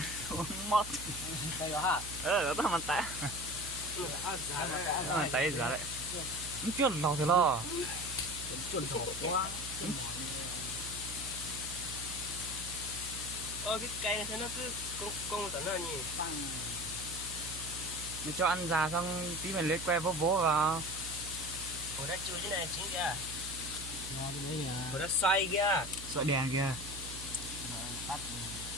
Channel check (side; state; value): right; noise; hum, 11 dB below the sound